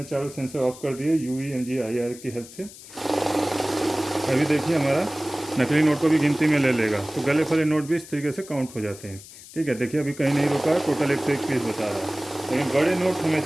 चारों सेंसर ऑफ कर दिए UV MG IR की हेल्प से, अभी देखिए हमारा नकली नोट को भी गिनती में ले लेगा। तो गले फले नोट भी इस तरीके से काउंट हो जाते हैं। ठीक है, देखिए अभी कहीं नहीं रुका है, टोटल 101 पीस बता रहा है। लेकिन बड़े नोट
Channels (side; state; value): left; noise; hiss, 17 dB below the sound